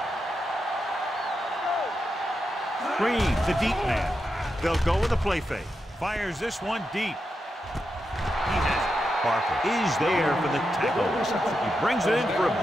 Green, the deep man. They'll go with a play fake. Fires this one deep. He has it. Parker is there for the tackle. He brings it in for a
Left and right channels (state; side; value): normal; both; correlation 0.87